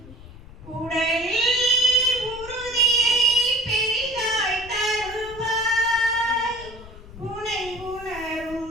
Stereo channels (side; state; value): left; noise; rumble, 17 dB below the sound